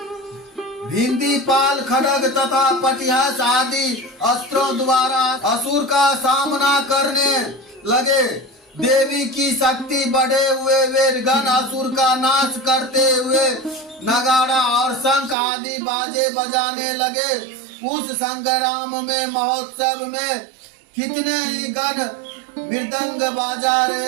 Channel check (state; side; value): drops out; left; at 15.4 s